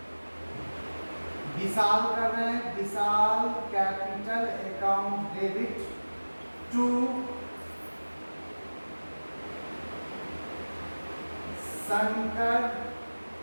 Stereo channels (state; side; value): inverted; both; correlation -1.00